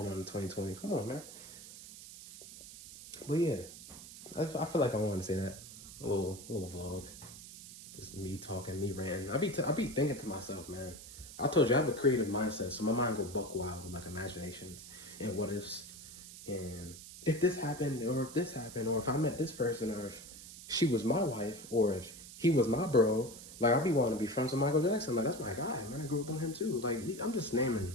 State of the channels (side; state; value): right; noise; hiss, 14 dB below the sound